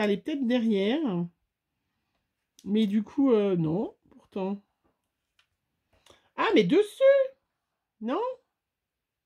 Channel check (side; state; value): both; identical; correlation 1.00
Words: allait peut-être derrière. Mais du coup, non, pourtant. Ah, mais dessus! Non?